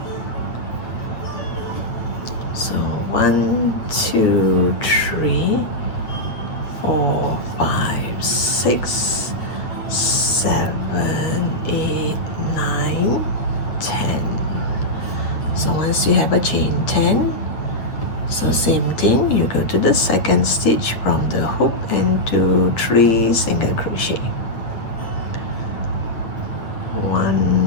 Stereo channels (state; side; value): late; right; 8.8 ms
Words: So 1, 2, 3, 4, 5, 6, 7, 8, 9, 10. So once you have a chain 10, so same thing, you go to the second stitch from the hook and do 3 single crochet.